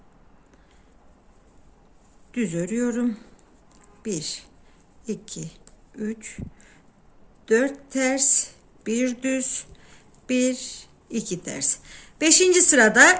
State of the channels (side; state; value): both; identical; correlation 1.00